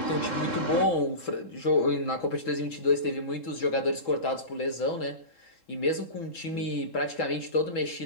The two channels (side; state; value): right; late; 3.7 ms